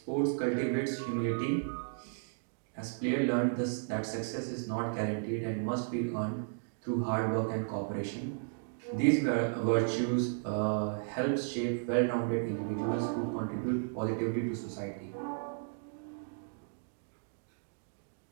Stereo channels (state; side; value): silent; left; digital silence